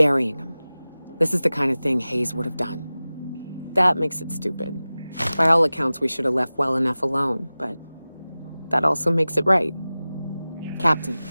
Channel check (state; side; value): inverted; both; correlation -0.97